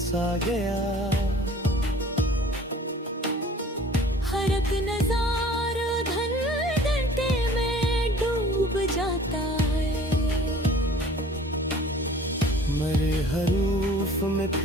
गया। हर एक नजारा धन घंटे में डूब जाता है। मरे हरूफ में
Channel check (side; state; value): both; normal; correlation 0.49